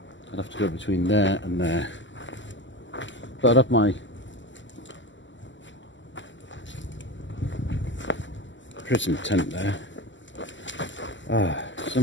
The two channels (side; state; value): right; late; 0.54 ms